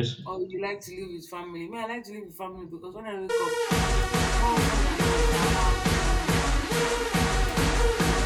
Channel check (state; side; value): identical; both; correlation 1.00